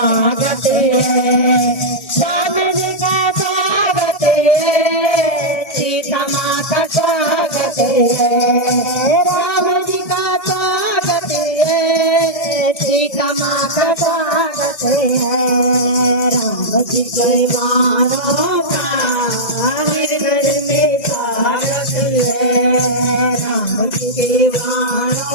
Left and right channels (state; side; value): late; right; 1.9 ms